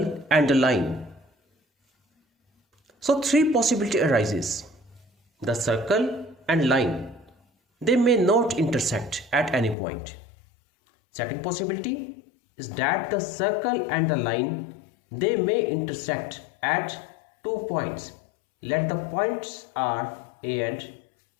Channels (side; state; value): right; drops out; at 9.8 s